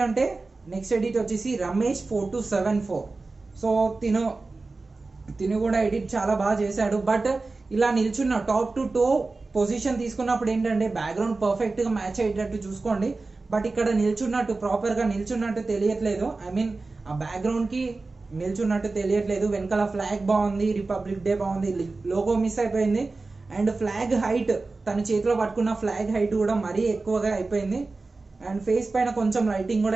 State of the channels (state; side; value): quieter; left; 3.6 dB